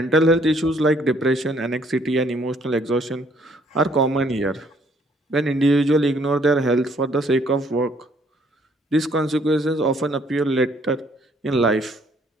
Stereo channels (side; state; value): both; normal; correlation 0.64